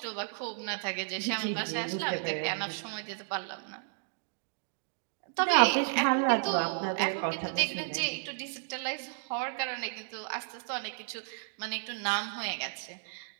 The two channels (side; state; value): left; silent; digital silence